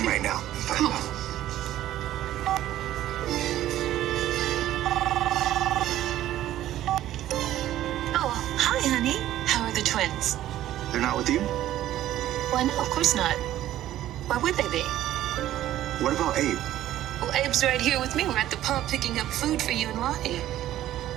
right now and find out. Oh, hi, honey. How are the twins? They're not with you? Why, no, of course not. Why would they be? What about Abe? Well, Abe's right here with me. We're at the pub picking up food for you and Lonnie.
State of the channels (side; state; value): left; quieter; 13.3 dB